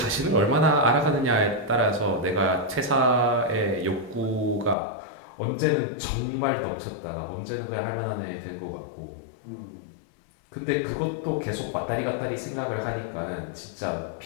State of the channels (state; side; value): drops out; right; at 4.8 s